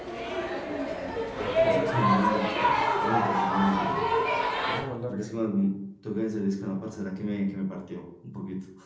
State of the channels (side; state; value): both; identical; correlation 1.00